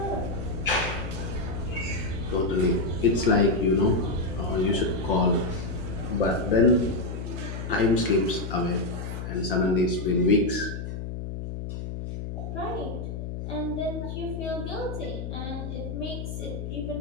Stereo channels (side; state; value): left; noise; hum, 6 dB below the sound